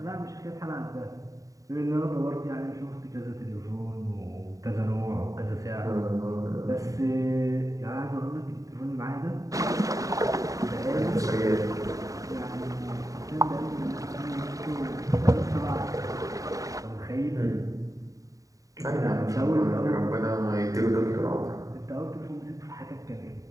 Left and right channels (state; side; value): late; left; 0.16 ms